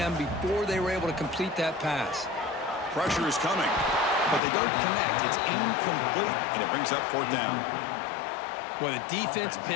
before they were able to complete that pass. Pressure is coming, but they don't connect. It's incomplete, and it brings up 4th down. Well, the defense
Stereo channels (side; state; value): right; drops out; at 4.4 s